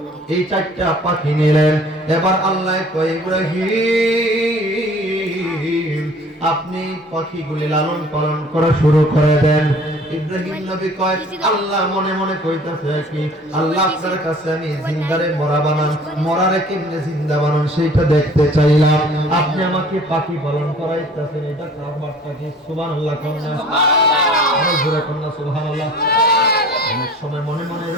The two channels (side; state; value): both; normal; correlation 0.50